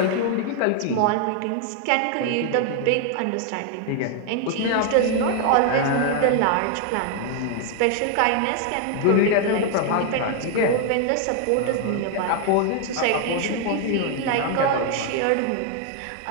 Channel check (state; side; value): different; both; correlation 0.00